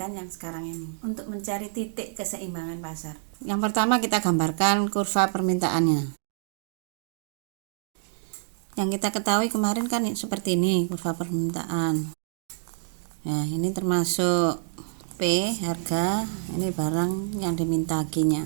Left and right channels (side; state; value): left; silent; digital silence